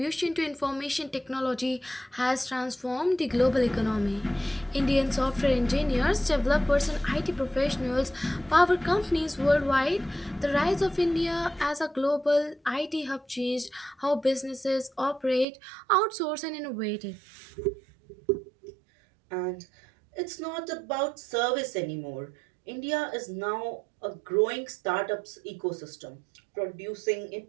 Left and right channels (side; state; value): left; drops out; at 15.5 s